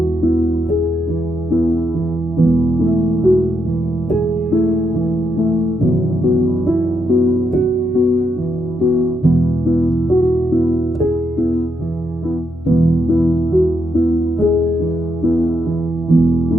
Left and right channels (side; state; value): both; normal; correlation 0.80